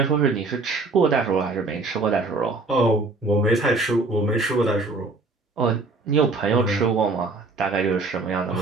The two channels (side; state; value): left; quieter; 3.5 dB